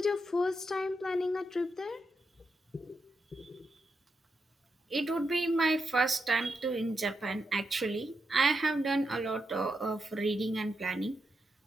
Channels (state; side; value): normal; both; correlation 0.84